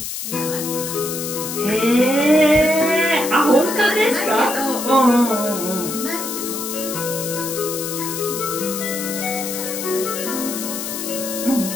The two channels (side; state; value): left; noise; hiss, 6 dB below the sound